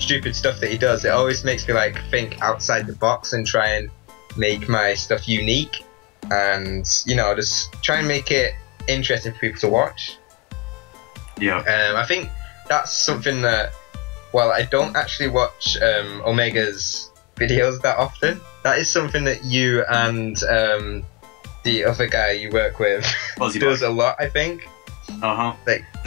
stuff that he does, it always makes me think outside the box and try and make my stuff unique, and just try and make it interesting for people to watch. Yeah. I think that's something that, while I don't actually watch Omega's videos that often, that is something that you and the other guy you work with does a lot, I think.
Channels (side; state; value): right; quieter; 23.6 dB